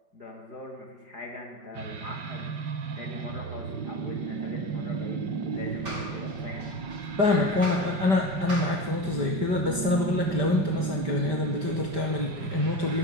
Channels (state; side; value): late; left; 5.1 ms